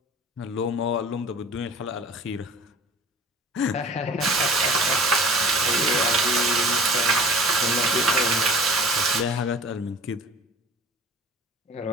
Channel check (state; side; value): normal; both; correlation 0.44